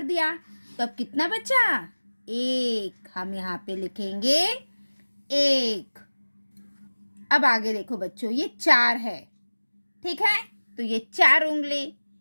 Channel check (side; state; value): both; inverted; correlation -1.00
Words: दिया, तो अब कितना बचा? 1। हम यहाँ पे लिखेंगे 1। अब आगे देखो बच्चों, ये 4 है, ठीक है? तो ये 4 उंगली